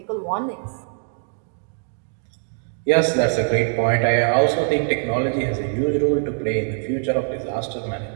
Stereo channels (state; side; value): silent; left; 64 dB below the other